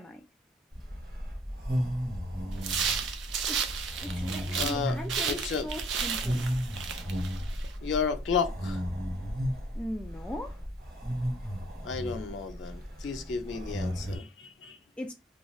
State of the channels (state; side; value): normal; both; correlation 0.58